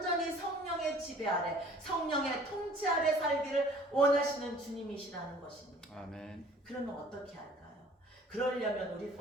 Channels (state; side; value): normal; both; correlation 0.51